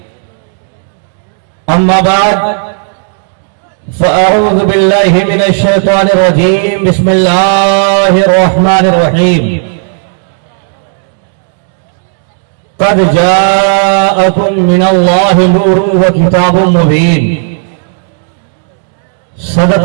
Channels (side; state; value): left; silent; 63 dB below the other